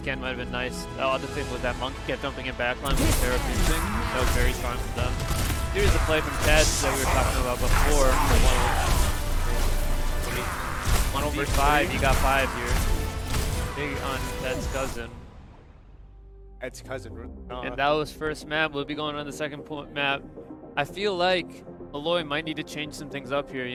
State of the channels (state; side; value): identical; both; correlation 1.00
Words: might have been nice. The other thing was that Monkey kept jumping in backline with Pharah pinching. That was very strong from them. Here's the play from Ted that we were talking about before. 1v5, you got 5 here. Big on Ted's cousin. Ed's cousin. And that was first map. We'll be going on the second map. I feel like Molloy might need to change some things up here,